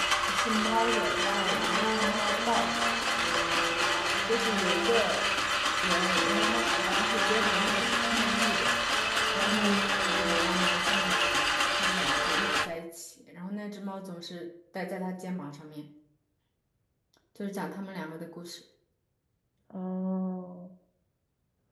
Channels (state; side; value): identical; both; correlation 1.00